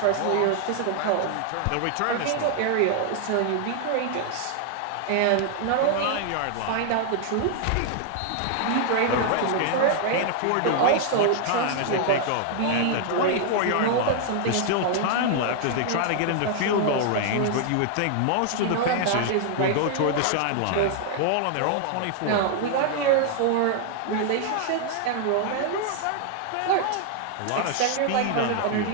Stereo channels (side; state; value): both; different; correlation 0.00